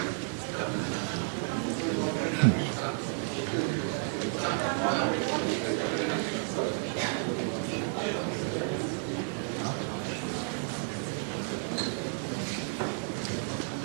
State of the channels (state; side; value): silent; left; 57 dB below the other